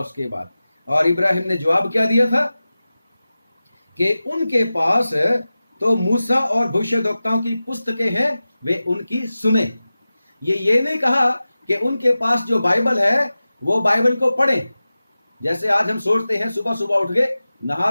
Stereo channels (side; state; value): both; inverted; correlation -0.95